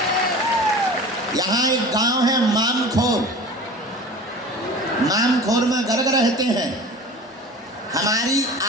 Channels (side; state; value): both; normal; correlation 0.38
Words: यहाँ एक गांव है मामखोर, मामखोर में गर्ग रहते हैं। हमारी